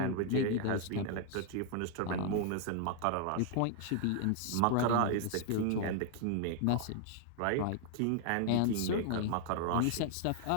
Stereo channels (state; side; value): different; both; correlation 0.00